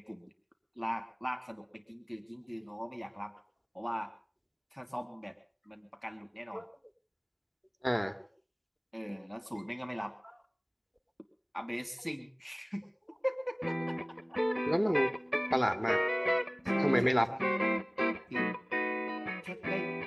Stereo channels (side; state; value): both; identical; correlation 1.00